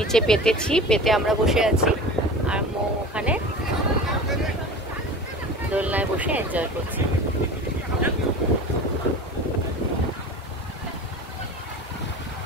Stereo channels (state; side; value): normal; both; correlation 0.35